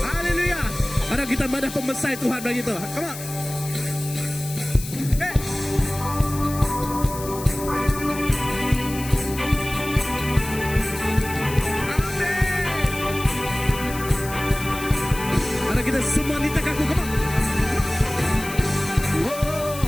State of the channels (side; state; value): left; noise; hiss, 12 dB below the sound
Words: Haleluya! Ada kita madah pemesai Tuhan bagi tu. Come on. Kita semua nita kaku, come on.